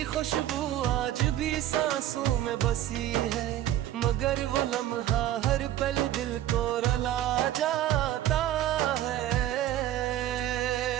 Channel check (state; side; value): quieter; left; 12.7 dB